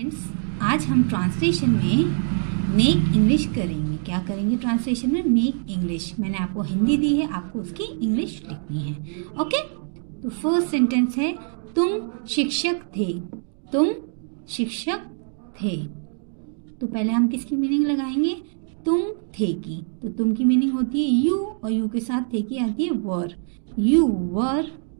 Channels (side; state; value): left; silent; 63 dB below the other